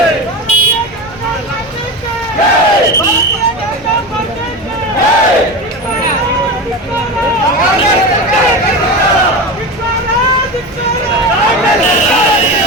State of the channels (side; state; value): both; normal; correlation 0.24